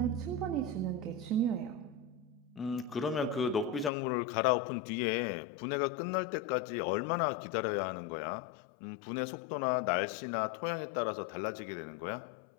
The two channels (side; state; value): right; drops out; at 3.9 s